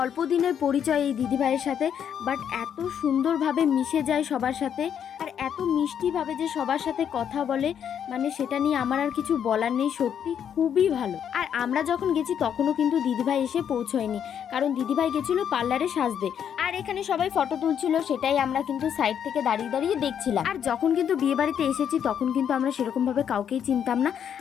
অল্প দিনের পরিচয় এই দিদিভাইয়ের সাথে, বাট এত সুন্দরভাবে মিশে যায় সবার সাথে, আর এত মিষ্টিভাবে যে সবার সাথে কথা বলে, মানে সেটা নিয়ে আমার আর কিছু বলার নেই। সত্যি খুবই ভালো। আর আমরা যখন গেছি তখনও কিন্তু দিদিভাই এসে পৌঁছয়নি, কারণ দিদিভাই গেছিল পার্লারে সাজতে। আর এখানে সবাই ফটো তুলছিল, সেটাই আমরা কিন্তু সাইড থেকে দাঁড়িয়ে দাঁড়িয়ে দেখছিলাম। আর যখন কিন্তু বিয়ে বাড়িতে এসেছি তখন কিন্তু আমরা সেরকম ভাবে কাউকেই চিনতাম না।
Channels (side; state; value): right; quieter; 8.6 dB